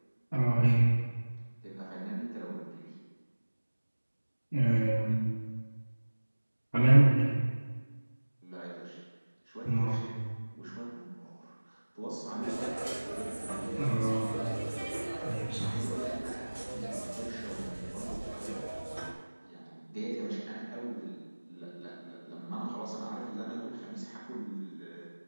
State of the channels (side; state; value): both; inverted; correlation -1.00